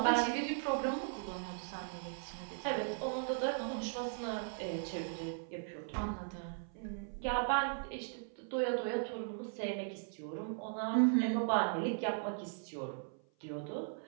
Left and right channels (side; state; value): left; silent; 52 dB below the other